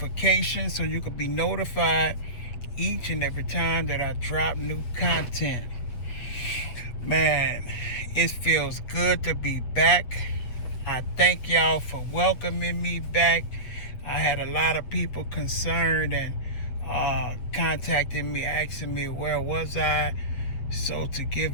so you can be notified each and every time that I drop new content. Man, it feels good to be back. I thank y'all for welcoming me back. I had a lot of people concerned and contacting me, asking me where was I. So to give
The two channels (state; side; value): late; right; 8.2 ms